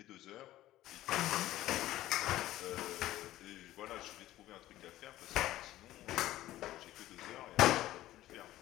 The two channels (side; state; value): right; quieter; 14.9 dB